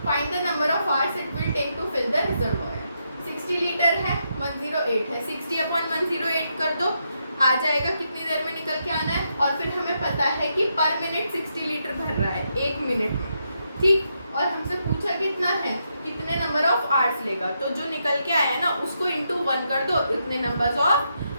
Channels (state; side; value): inverted; both; correlation -0.81